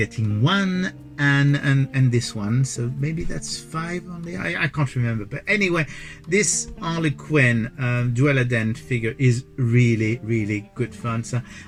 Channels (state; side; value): identical; both; correlation 1.00